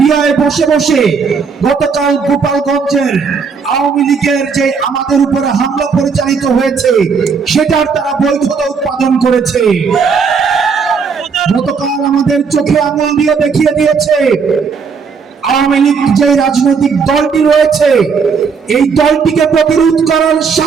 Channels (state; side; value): quieter; left; 5.6 dB